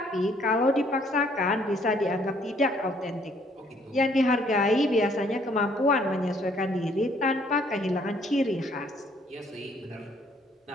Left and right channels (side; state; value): both; normal; correlation 0.64